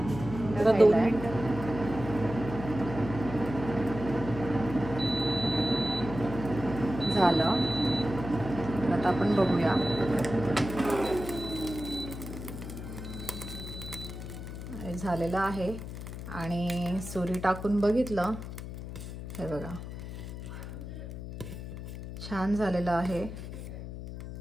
2 मिनिटं झालं। आता आपण बघूया। झालेलं आहे आणि सुरी टाकून बघितलं, हे बघा छान झालेलं आहे।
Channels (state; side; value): noise; left; hum, 9 dB below the sound